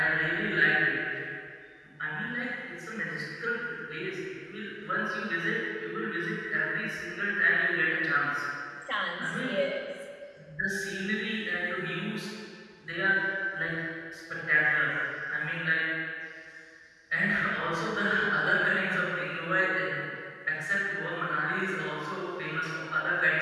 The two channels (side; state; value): both; identical; correlation 1.00